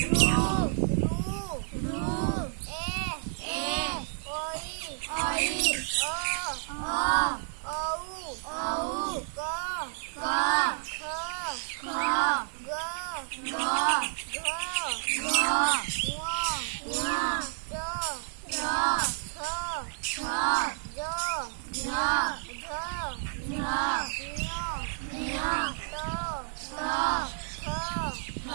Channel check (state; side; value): silent; left; digital silence